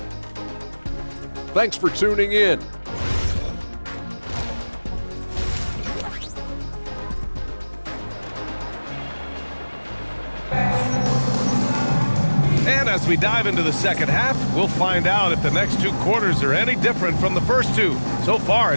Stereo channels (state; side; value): inverted; both; correlation -1.00